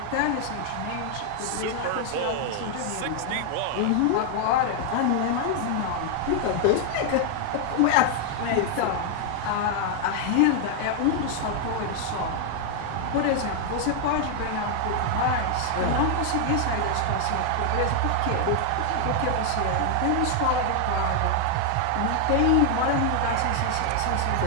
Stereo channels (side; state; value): both; different; correlation 0.00